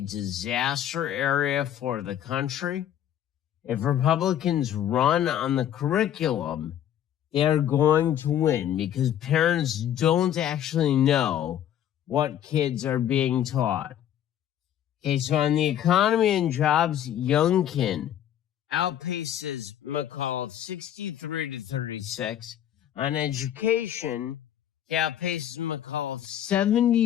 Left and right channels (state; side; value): quieter; right; 10.8 dB